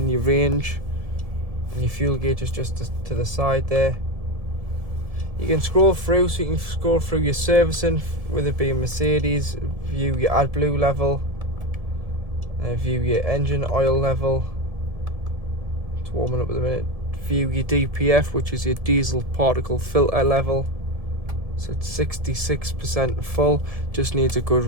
your range, and your fuel gauge is just to the side there. You can scroll through, so you can scroll through your servicing, with it being Mercedes, view your AdBlue level, view your engine oil level, it's warming up at the minute, view your DPF, which is your diesel particle filter level, so it's 66% full, just needs a good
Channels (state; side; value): late; left; 1.9 ms